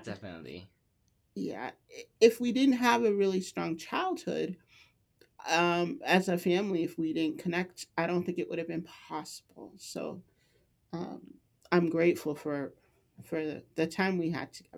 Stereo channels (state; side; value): identical; both; correlation 1.00